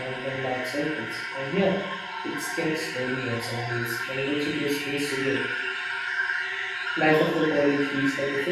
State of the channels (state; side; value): identical; both; correlation 1.00